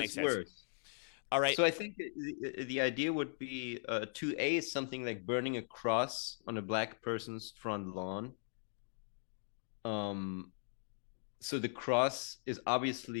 sense. Worse. All right. So I think the idea would be 2A is something like burning a cross on a black person's front lawn. So the cross is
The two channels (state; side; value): silent; right; digital silence